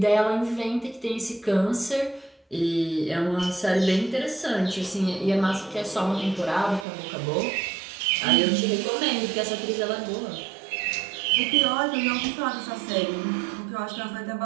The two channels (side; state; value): left; drops out; at 6.9 s